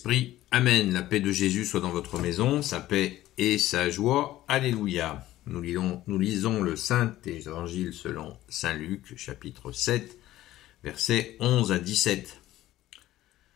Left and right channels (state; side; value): quieter; right; 14.9 dB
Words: Amen. La paix de Jésus soit dans votre maison, sa paix et sa joie. Alléluia. Nous lisons le Saint-Évangile selon Saint Luc, chapitre 7, versets 11 à 17.